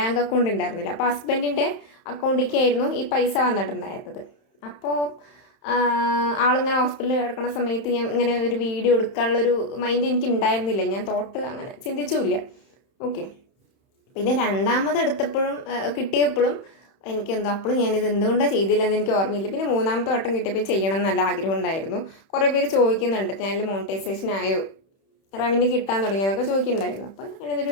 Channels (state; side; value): late; right; 31 ms